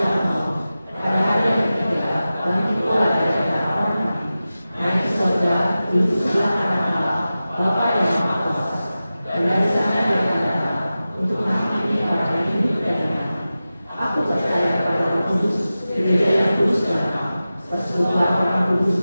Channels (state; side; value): inverted; both; correlation -0.94